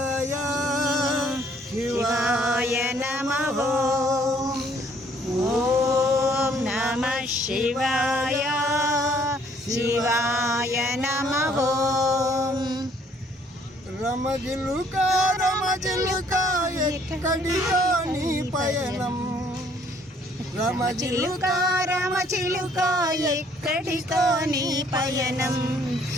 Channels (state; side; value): normal; both; correlation 0.63